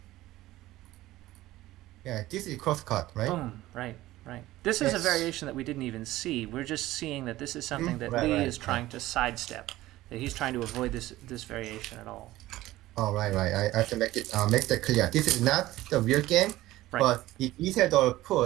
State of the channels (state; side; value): quieter; left; 16.5 dB